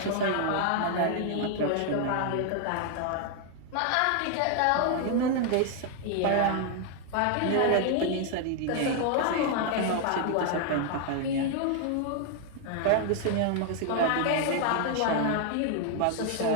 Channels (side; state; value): both; different; correlation 0.00